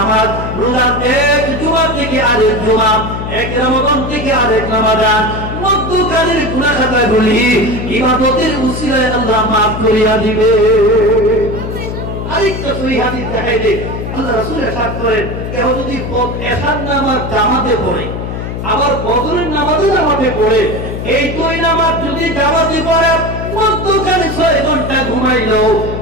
রোজা এক জুমা থেকে আরেক জুমা, এক রমজান থেকে আরেক রমজান, মধ্যকালের গুনাহ খাতাগুলি ইবাদতের উসিলায় আল্লাহ maaf করিয়া দিবে। আরেকটা সহিহ হাদিস দেখাই দেই, আল্লাহ রাসূল ইরশাদ করেন, কেউ যদি এশার নামাজ জামাতে পড়ে আবার ফজরের নামাজও জামাতে পড়ে, এই 2 নামাজ যদি জামাতে পড়ে মধ্যখানে 6 ঘন্টা ঘুমাইলো,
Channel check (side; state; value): left; noise; hum, 6 dB below the sound